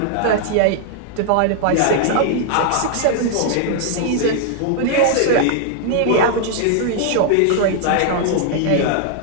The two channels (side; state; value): both; different; correlation 0.00